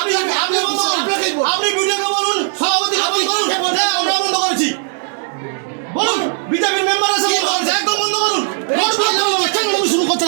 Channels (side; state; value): left; silent; 64 dB below the other